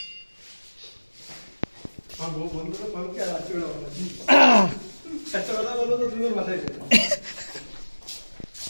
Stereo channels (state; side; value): inverted; both; correlation -1.00